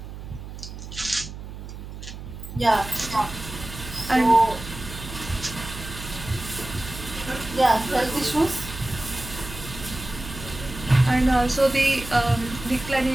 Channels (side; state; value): right; noise; hum, 11 dB below the sound